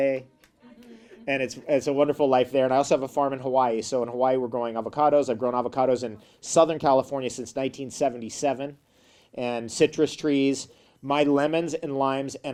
And it's a wonderful life there. And I also have a farm in Hawaii. So in Hawaii, we're growing avocados. I've grown avocados in Southern California since 1977. And citrus trees. My lemons and limes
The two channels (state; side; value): identical; both; correlation 1.00